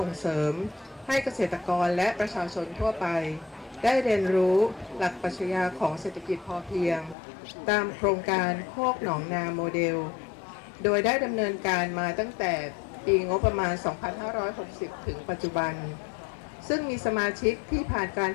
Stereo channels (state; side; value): drops out; right; at 7.2 s